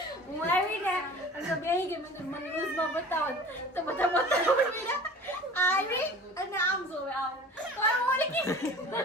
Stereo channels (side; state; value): both; normal; correlation 0.41